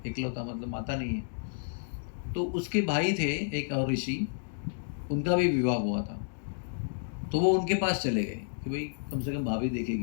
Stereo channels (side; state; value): right; silent; digital silence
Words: इकलौता, मतलब माता नहीं है। तो उसके भाई थे एक और ऋषि, उनका भी विवाह हुआ था, तो वो उनके पास चले गए कि भाई कम से कम भाभी